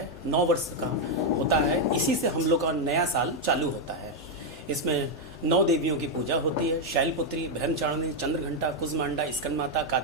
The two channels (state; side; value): normal; both; correlation 0.01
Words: 9 वर्ष का होता है, इसी से हम लोग का नया साल चालू होता है। इसमें 9 देवियों की पूजा होती है, शैलपुत्री, ब्रह्मचारिणी, चंद्रघंटा, कुजमांडा, स्कंदमाता,